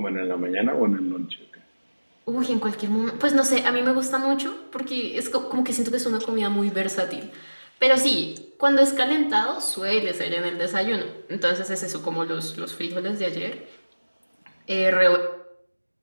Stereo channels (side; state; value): both; inverted; correlation -1.00